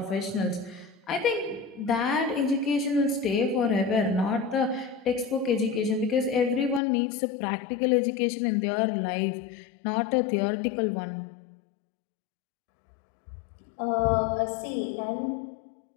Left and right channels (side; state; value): right; drops out; at 6.8 s